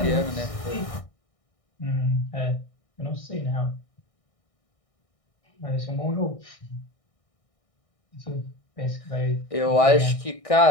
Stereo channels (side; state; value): right; late; 1.6 ms